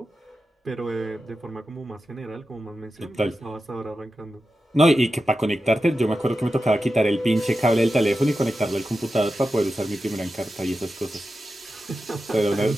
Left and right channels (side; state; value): both; normal; correlation 0.91